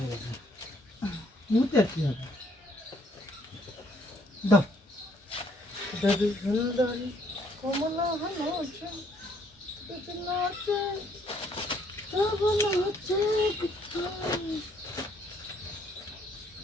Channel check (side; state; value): both; normal; correlation 0.66